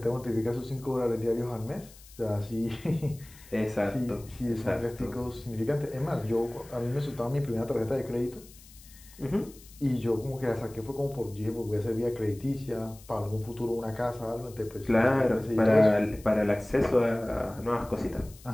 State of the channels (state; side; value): noise; left; hiss, 22 dB below the sound